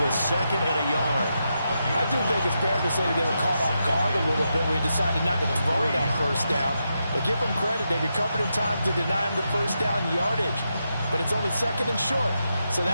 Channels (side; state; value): both; inverted; correlation -0.85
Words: 2nd and a yard. I do think it's fair to say that they were caught off guard a little bit when he decided not to throw it on first down. But give them credit, they recovered in time to deny him the first down yardage. But it's only 2nd and short, so